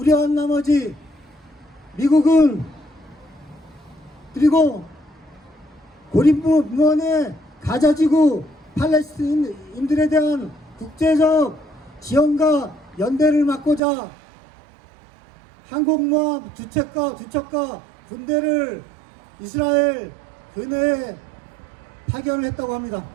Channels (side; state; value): left; drops out; at 13.8 s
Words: 나머지 미국은 그리고 고립무원의 가자지구 팔레스타인인들에 대한 국제적 지원과 연대를 막고자 항공모함 두 척과 군대를 이스라엘 근해에 파견을 했다고 합니다.